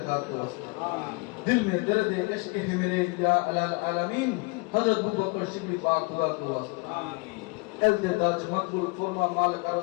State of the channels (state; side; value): quieter; right; 27.9 dB